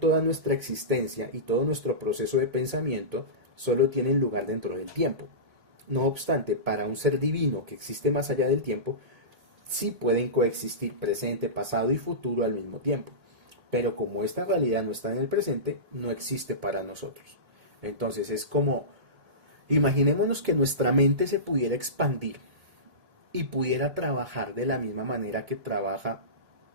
nuestra existencia y todo nuestro proceso de pensamiento solo tienen lugar dentro del tiempo. No obstante, para un ser divino que existe más allá del tiempo, sí pueden coexistir presente, pasado y futuro al mismo tiempo. Pero como esta realidad no está en el presente, no existe para nosotros. Entonces es como, imaginémonos que nuestra mente se pudiera expandir y pudiera trabajar de la misma manera que trabaja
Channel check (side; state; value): left; late; 1.7 ms